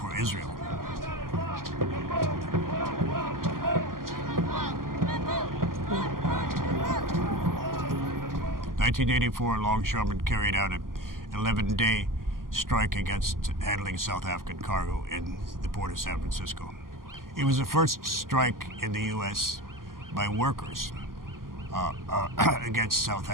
Israel. 1984, longshoremen carried out an 11-day strike against handling South African cargo in the port of San Francisco. It was the first strike in the U.S. by workers against South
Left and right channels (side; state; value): left; late; 0.91 ms